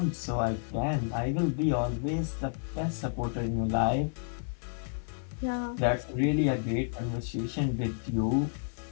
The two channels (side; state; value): right; silent; 57 dB below the other